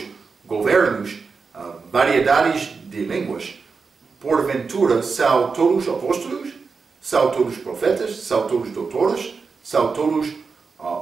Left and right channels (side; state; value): left; quieter; 4.9 dB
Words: governos, variedades de línguas. Porventura, são todos apóstolos? São todos profetas? São todos doutores? São todos